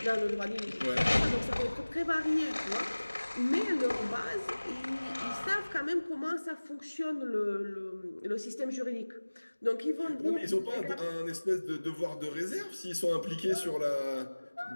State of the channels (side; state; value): both; inverted; correlation -1.00